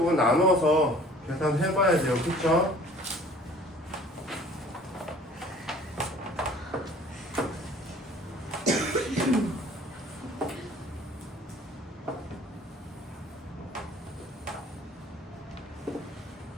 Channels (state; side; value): normal; both; correlation 0.51